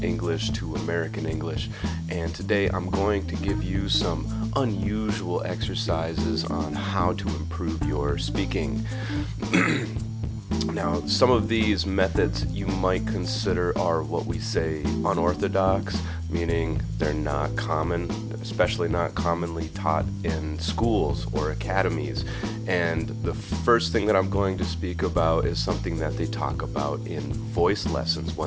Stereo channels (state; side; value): identical; both; correlation 1.00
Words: English to American English, and today I'm going to give you some unusual exercises on how to improve your speaking. Now, some of these methods you might consider are what we say unorthodox, meaning they're not common, especially not commonly taught in schools or academies. And the first thing that I'm going to speak about is something that they talk about in voice lessons